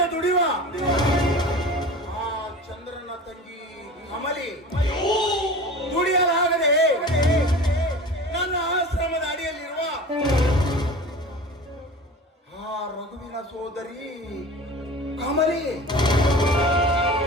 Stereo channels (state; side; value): normal; both; correlation 0.37